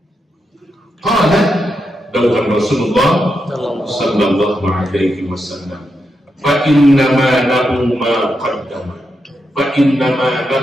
Qala dawuhan Rasulullah sallallahu alaihi wasallam fa inna ma lahu ma qaddama fa inna ma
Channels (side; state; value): both; normal; correlation 0.85